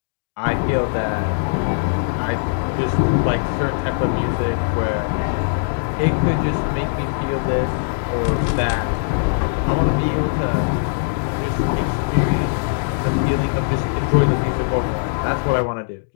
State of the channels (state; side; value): silent; right; digital silence